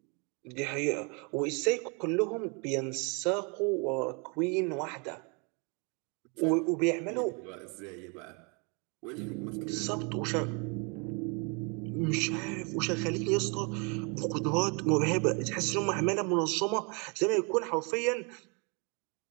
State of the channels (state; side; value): quieter; left; 33.1 dB